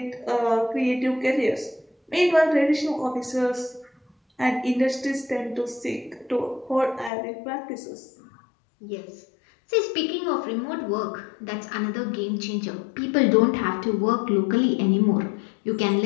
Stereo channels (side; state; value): right; drops out; at 7.1 s